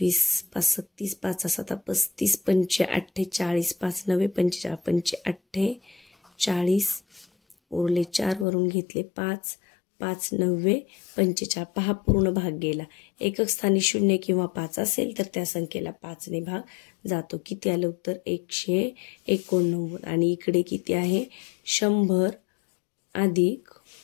5 36, 5 7 35, 5 8 40, 5 9 45, 5 8 40, उरले 4, वरून घेतले 5, 5 9 45. पहा, पूर्ण भाग गेला. एकक स्थानी 0 किंवा 5 असेल तर त्या संख्येला 5ने भाग जातो. किती आलं उत्तर? 189. आणि इकडे किती आहे? 100 अधिक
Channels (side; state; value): right; drops out; at 8.5 s